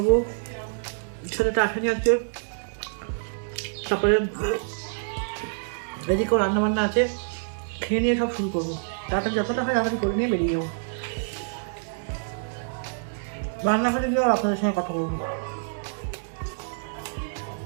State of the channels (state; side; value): silent; left; digital silence